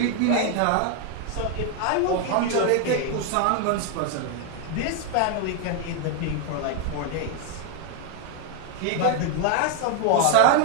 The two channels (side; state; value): both; different; correlation 0.01